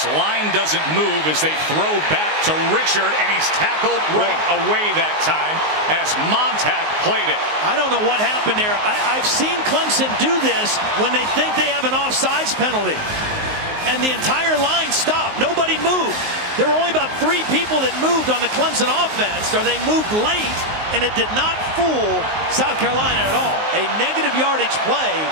line doesn't move as they throw back to Richard, and he's tackled right away that time as Montag played it. I don't know what happened there. I've seen Clemson do this when they think they have an offsides penalty, and the entire line stopped. Nobody moved. There were only about 3 people that moved on the Clemson offense, or they moved late, and it did not fool South Carolina at all. A negative yardage play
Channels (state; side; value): late; left; 19 ms